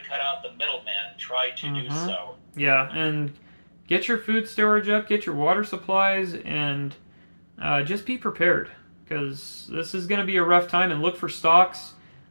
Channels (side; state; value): both; inverted; correlation -1.00